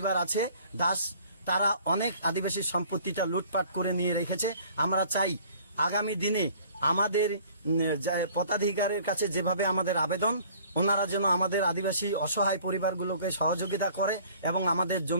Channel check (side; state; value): both; inverted; correlation -0.53